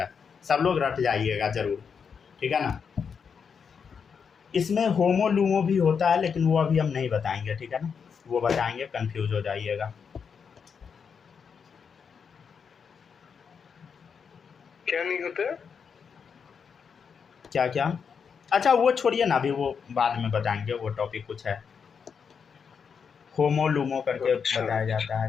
सब लोग रट जाइएगा ज़रूर, ठीक है ना। इसमें होमो लूमो भी होता है, लेकिन वो अभी हम नहीं बताएंगे, ठीक है ना, वो बताएंगे कंफ्यूज हो जाइएगा। क्या नहीं होता है, क्या क्या, अच्छा वो छोड़िए ना, अभी वो बाद में बताएंगे, वो टॉपिक कुछ है, होमो लूमो करके अच्छा। बताया जाता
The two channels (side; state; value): right; quieter; 6.4 dB